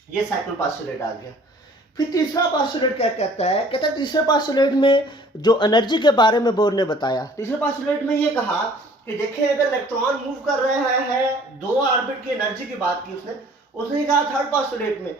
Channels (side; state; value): both; normal; correlation 0.53